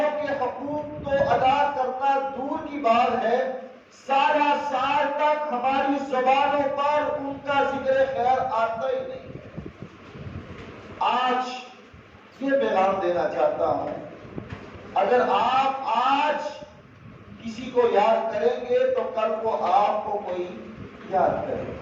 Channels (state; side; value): identical; both; correlation 1.00